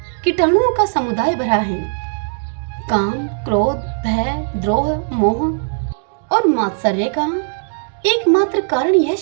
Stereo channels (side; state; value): left; silent; digital silence